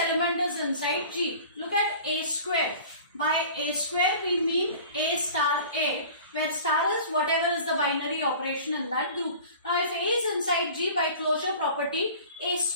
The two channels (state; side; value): inverted; both; correlation -0.42